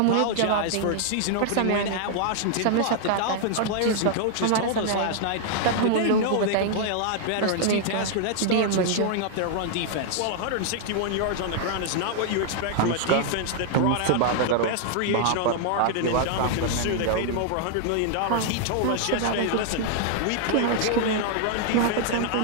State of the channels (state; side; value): different; both; correlation -0.01